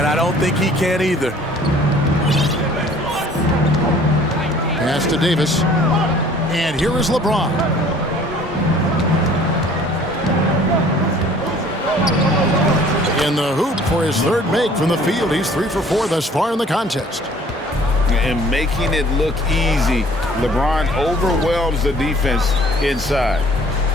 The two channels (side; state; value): both; normal; correlation 0.53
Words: I don't think he can either. Pass to Davis. And here is LeBron. In the hoop for his third make from the field. He's 3 for 4 thus far in the contest. And making it look easy. LeBron overwhelms the defense inside.